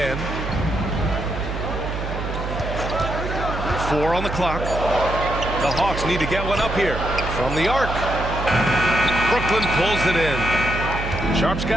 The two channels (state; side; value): noise; right; hum, 5 dB below the sound